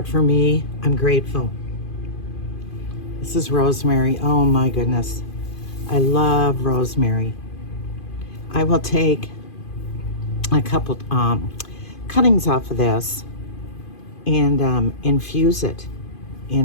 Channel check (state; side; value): late; right; 2.5 ms